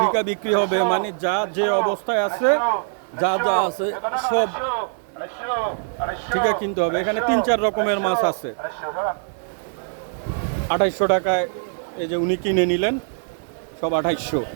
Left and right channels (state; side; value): silent; left; digital silence